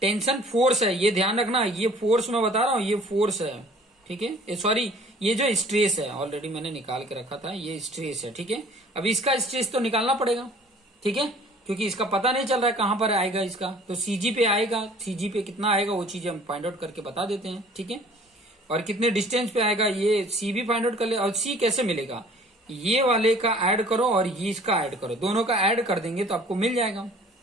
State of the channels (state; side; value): normal; both; correlation 0.51